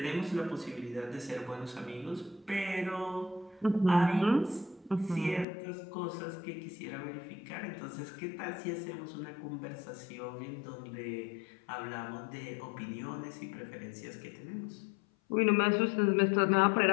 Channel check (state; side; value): drops out; right; at 5.5 s